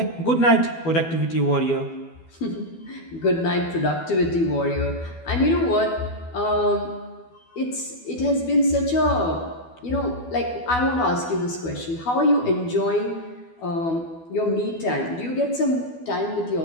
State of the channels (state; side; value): late; right; 12 ms